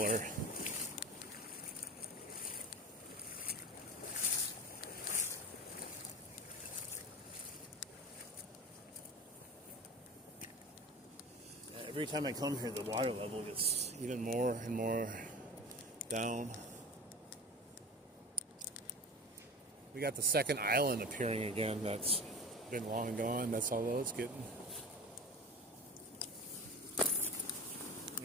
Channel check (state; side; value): normal; both; correlation 0.34